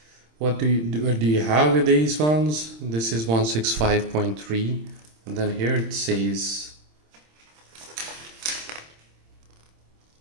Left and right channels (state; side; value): late; left; 26 ms